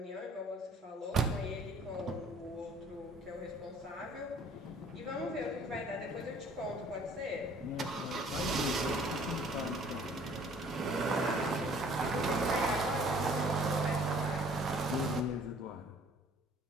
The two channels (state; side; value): normal; both; correlation 0.55